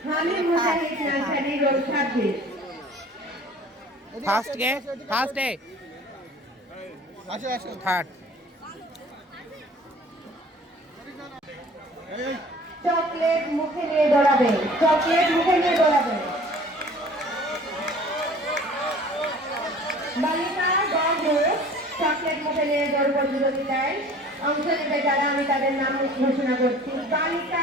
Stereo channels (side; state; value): both; normal; correlation 0.48